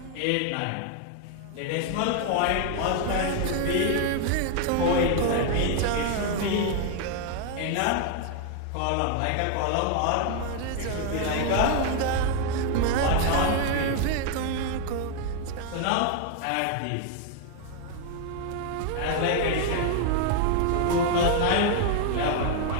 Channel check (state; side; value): different; both; correlation 0.00